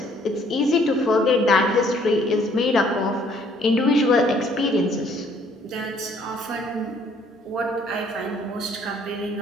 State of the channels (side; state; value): both; normal; correlation 0.62